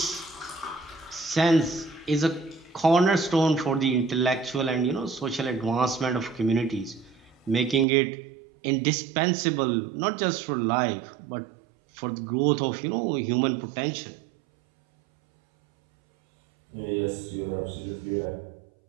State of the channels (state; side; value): drops out; left; at 7.9 s